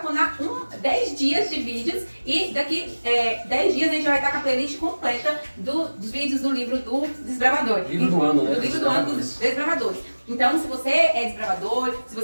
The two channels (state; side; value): inverted; both; correlation -1.00